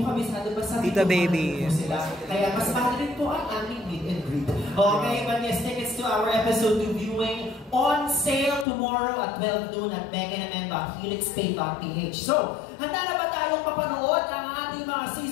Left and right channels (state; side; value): drops out; right; at 8.7 s